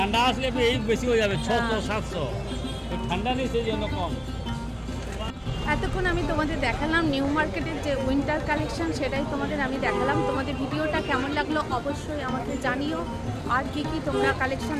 আসলে এই বেশি হয়ে যাবে 600 হ্যাঁ। 700 তো ঠান্ডা নেই সেই জন্য কম এতক্ষণ আমি তোমাদের দেখালাম নিউ মার্কেটের যে উইন্টার কালেকশন, সেটাই তোমাদের আমি দেখালাম। তোমাদের ভিডিওটা কেমন লাগলো অবশ্যই আমাকে জানিও, আর কি কি তোমরা কালেকশন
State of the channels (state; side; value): identical; both; correlation 1.00